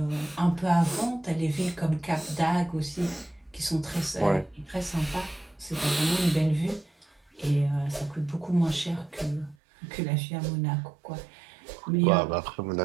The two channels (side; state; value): left; drops out; at 9.6 s